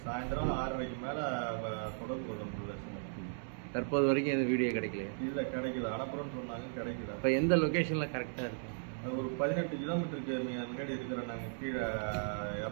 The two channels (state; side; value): silent; left; digital silence